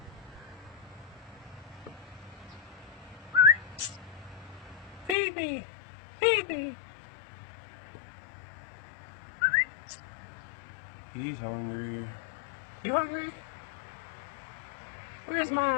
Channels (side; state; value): right; drops out; at 5.2 s